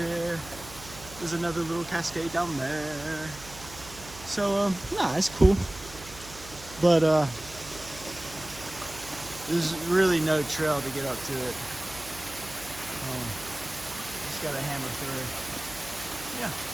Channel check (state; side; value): noise; right; hum, 16 dB below the sound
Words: there's another little cascade down there. So, nah, it's cool. But there's really no trail to get up to it. Just gotta hammer through. Yeah.